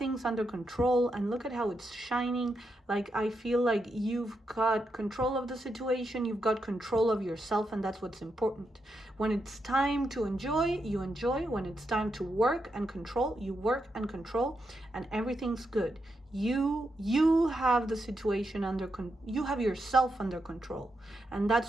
under control, and look at how it's shining. Like, I feel like you've got control of the situation, you've got control of yourself, and that's what's important. When it's time to enjoy, you enjoy. When it's time to work and control, you work and control, and everything's good. You have the situation you have yourself under control, and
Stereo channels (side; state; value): both; normal; correlation 0.84